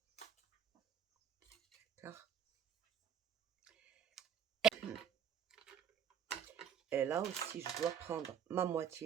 d'accord? Et là aussi, je dois prendre ma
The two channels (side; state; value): left; quieter; 8.6 dB